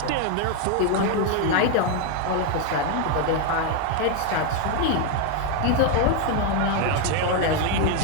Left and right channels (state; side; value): different; both; correlation 0.01